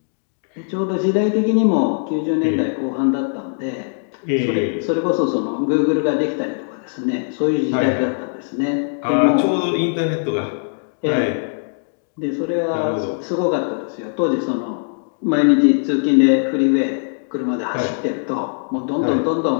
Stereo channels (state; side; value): silent; right; digital silence